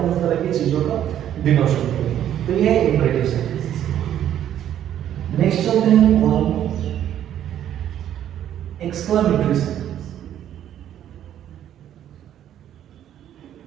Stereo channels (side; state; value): left; quieter; 10.8 dB